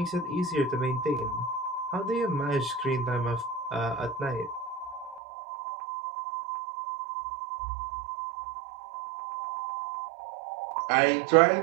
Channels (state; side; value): drops out; left; at 5.2 s